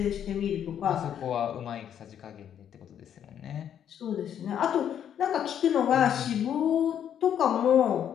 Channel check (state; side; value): quieter; right; 9.4 dB